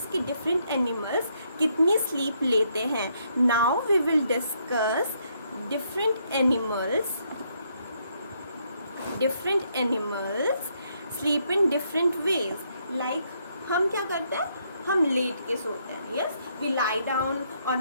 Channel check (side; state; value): both; inverted; correlation -0.74